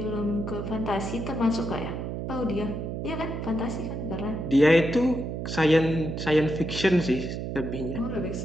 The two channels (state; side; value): noise; right; hum, 4 dB below the sound